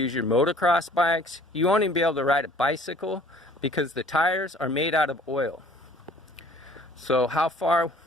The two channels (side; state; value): both; normal; correlation 0.54